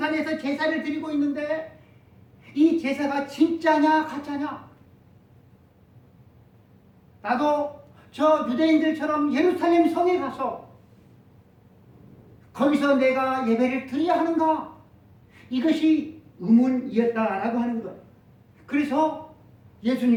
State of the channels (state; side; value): identical; both; correlation 1.00